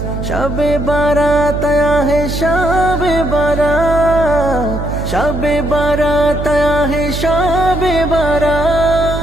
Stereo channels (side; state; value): right; noise; hum, 5 dB below the sound